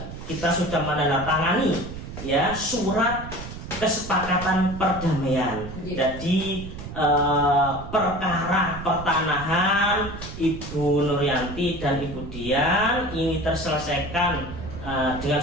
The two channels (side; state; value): right; noise; rumble, 10 dB below the sound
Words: kita sudah menandatangani ya surat kesepakatan perdamaian. Jadi perkara pertanahan Ibu Nuryanti dan Ibu Dian ini terselesaikan dengan